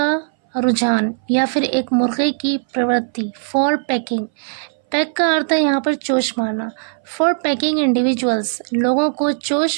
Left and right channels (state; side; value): silent; left; 63 dB below the other